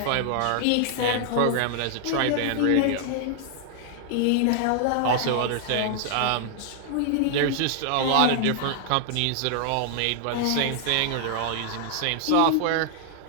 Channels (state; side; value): different; both; correlation 0.00